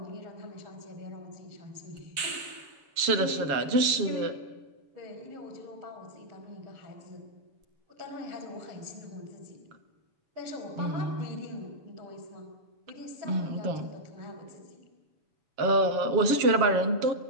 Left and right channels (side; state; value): left; late; 7.0 ms